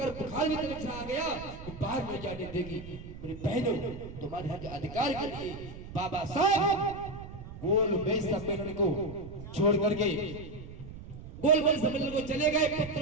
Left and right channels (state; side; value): noise; right; rumble, 13 dB below the sound